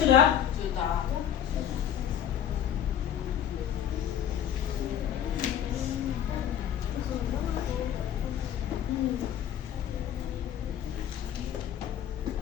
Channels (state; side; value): quieter; right; 9.8 dB